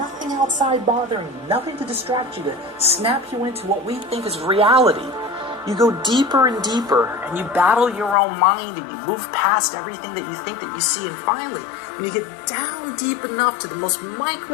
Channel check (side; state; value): right; drops out; at 8.2 s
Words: outside bothering you, nothing to distract you, to snap you into what we think is reality, you go deeper and deeper, and you battle your own mind, and you move past everything that you think that you see, and finally, when you get down deep enough to the most